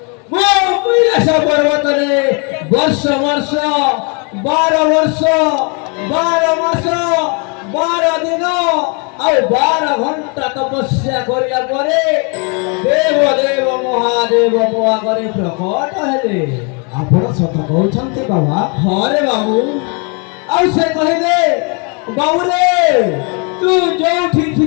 मो कैलाश पर्वत रे वर्ष वर्ष 12 वर्ष 12 मास 12 दिन ଆଉ 12 ଘଣ୍ଟା ତପସ୍ୟା କରିବା ପରେ ଦେବ ଦେବ ମହାଦେବ ମୋ ଆଗରେ ପ୍ରକଟ ହେଲେ। ଆପଣ ସତ କହୁଛନ୍ତି ବାବା? ହଁ ରେ ବାବୁ। ଆଉ ସେ କହିଲେ ବାବୁ ରେ ତୁ ଯୋଉଠି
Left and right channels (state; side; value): quieter; right; 35.0 dB